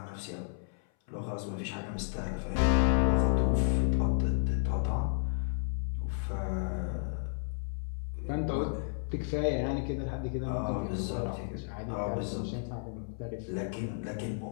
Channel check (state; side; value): silent; right; 56 dB below the other